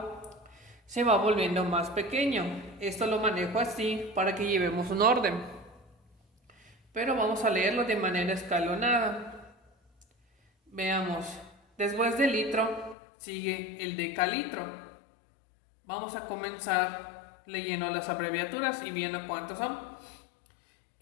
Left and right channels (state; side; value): drops out; right; at 13.0 s